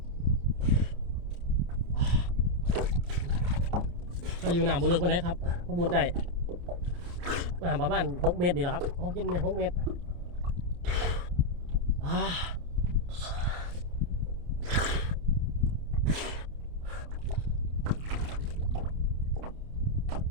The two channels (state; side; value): late; left; 29 ms